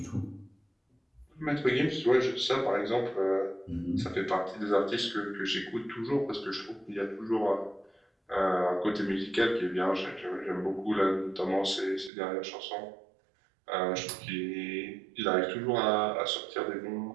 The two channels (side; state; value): left; drops out; at 12.1 s